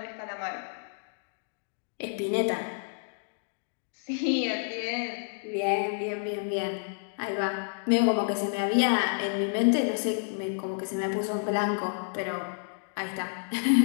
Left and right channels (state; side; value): silent; right; digital silence